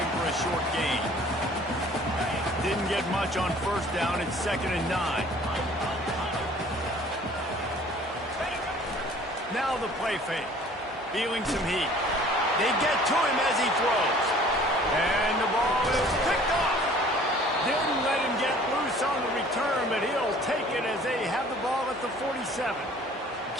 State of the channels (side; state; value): both; normal; correlation 0.52